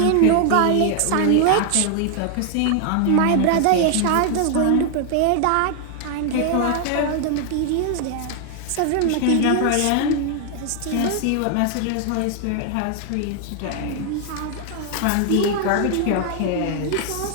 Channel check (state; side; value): different; both; correlation 0.00